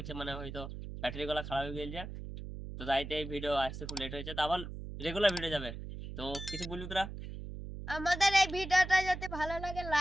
মানে হয়তো ব্যাটারি গুলো খারাপ হয়ে গেছে। তো তাইতে এই ভিডিও আসতে খুব লেট হয়েছে, তো আবার রেগুলার ভিডিও যাবে। তো কিছু বলবি তোরা? আমাদের এই ভিডিওটা যদি ভালো লাগে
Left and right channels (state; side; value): noise; right; hum, 9 dB below the sound